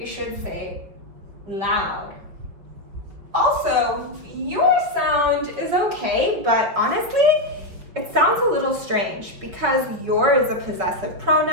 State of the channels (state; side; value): late; left; 5.5 ms